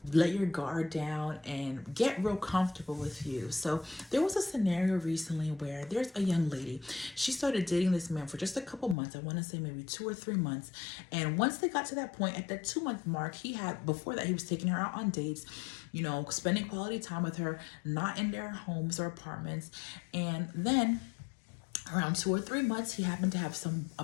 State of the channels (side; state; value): right; drops out; at 9.0 s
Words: let your guard down and get real comfortable with you. So there was a scenario recently where there's a young lady. She started dating this man for just a couple months. I want to say maybe 2 or 3 months. And once they got to that point, at that 2-month mark, before that, he was taking her out on dates, spending quality time with her, not in their homes or apartments. And then around 2 or 3 months, he happened to have a